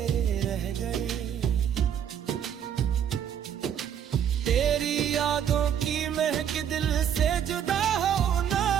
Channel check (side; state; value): left; quieter; 9.0 dB